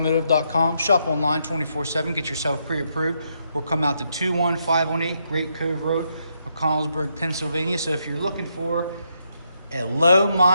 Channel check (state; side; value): inverted; both; correlation -0.78